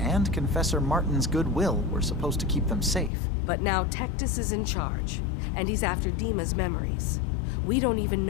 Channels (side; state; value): right; drops out; at 3.1 s